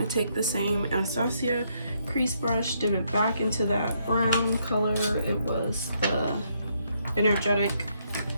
take the same Anastasia crease brush, dip it back into that brown color. It was the Energetic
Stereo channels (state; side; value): inverted; both; correlation -0.74